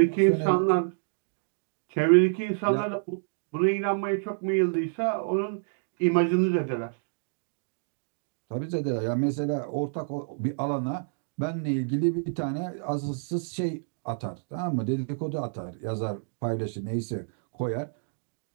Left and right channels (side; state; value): left; silent; digital silence